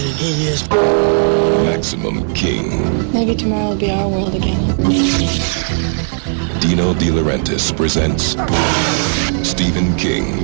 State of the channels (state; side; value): silent; left; 69 dB below the other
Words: and he is. Maximum King. Maybe tomorrow will be our world again. Dino De Laurentiis presents Stephen